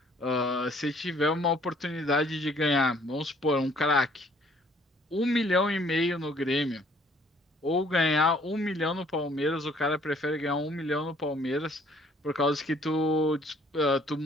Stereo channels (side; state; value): both; normal; correlation 0.60